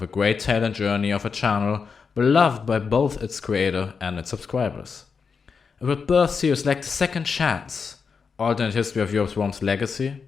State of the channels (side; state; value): right; quieter; 5.6 dB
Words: a great tale and journey of a channel beloved by both its creator and its subscribers. It would birth series like The Second Chance, Alternate History of Europe's Worms Legacy,